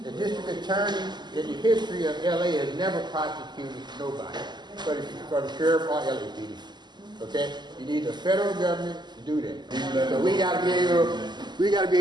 The district attorney in the history of LA has never prosecuted nobody for the sheriff or LAPD. Okay? You need the federal government to do that. So we got to be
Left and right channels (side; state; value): left; late; 0.21 ms